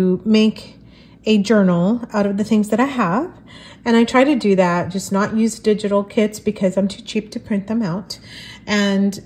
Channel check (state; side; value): identical; both; correlation 1.00